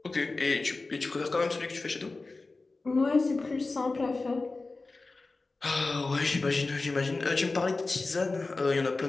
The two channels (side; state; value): right; quieter; 3.5 dB